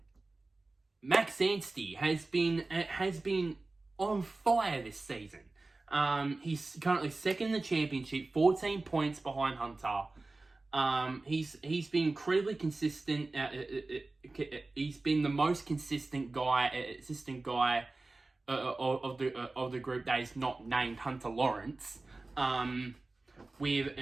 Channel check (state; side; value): quieter; left; 3.3 dB